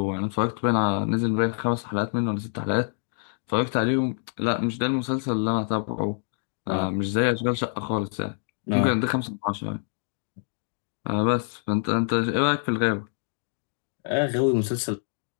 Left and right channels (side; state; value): right; silent; 61 dB below the other